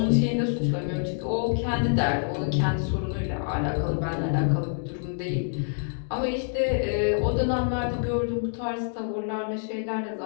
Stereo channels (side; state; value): right; silent; digital silence